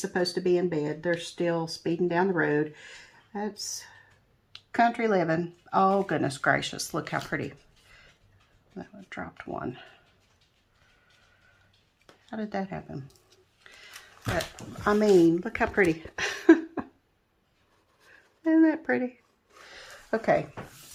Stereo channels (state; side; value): identical; both; correlation 1.00